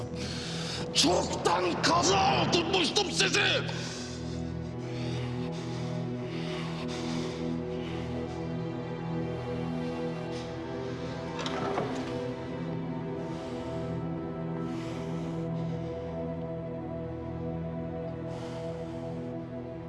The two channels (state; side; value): identical; both; correlation 1.00